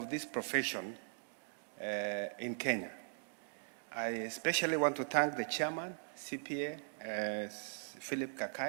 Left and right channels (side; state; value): left; silent; digital silence